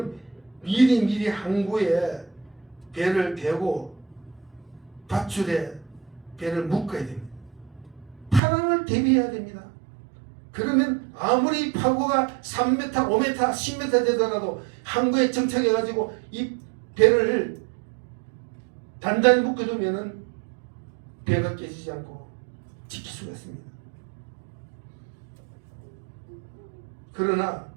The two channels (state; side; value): drops out; left; at 8.4 s